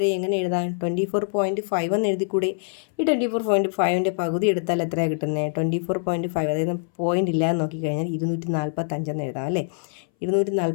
എങ്ങനെ എഴുതാൻ? 24.5 എന്ന് എഴുതിക്കൂടെ? ഈ 24.5ൻ്റെ പകുതി എടുത്താൽ എത്രയാണ് കിട്ടുന്നത്? 24.5. അതായത് പോയിൻ്റ് ഇല്ലാന്ന് നോക്കിക്കഴിഞ്ഞാൽ 245 എന്ന് എഴുതാം അല്ലേ.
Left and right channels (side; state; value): right; silent; 61 dB below the other